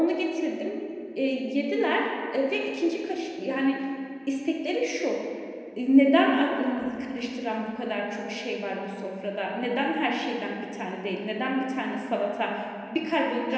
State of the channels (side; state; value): both; identical; correlation 1.00